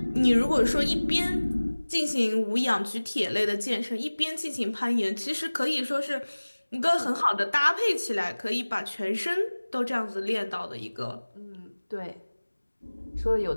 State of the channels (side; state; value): both; inverted; correlation -1.00